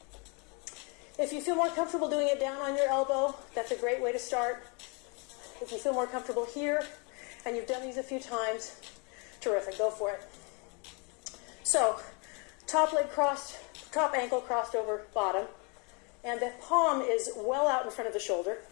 If you feel more comfortable doing it down on your elbow, that's a great way to start. If you feel more comfortable here, and you've done these a few times, terrific, go for it. So, top leg crossed, top ankle crossed over bottom, and the palm is well out in front of the shoulder.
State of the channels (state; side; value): quieter; right; 33.5 dB